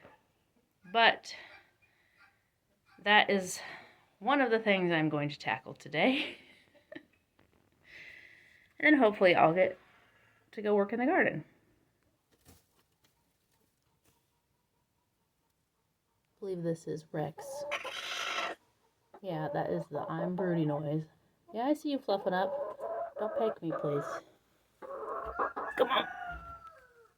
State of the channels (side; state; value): both; identical; correlation 1.00